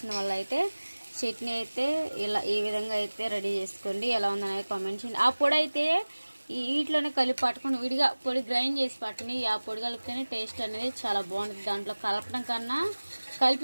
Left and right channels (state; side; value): inverted; both; correlation -1.00